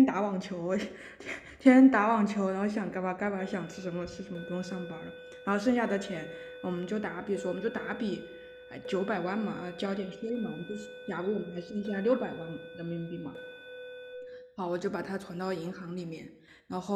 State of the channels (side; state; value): both; identical; correlation 1.00